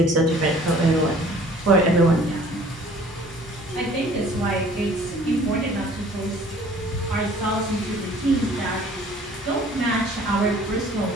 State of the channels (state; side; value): normal; both; correlation 0.52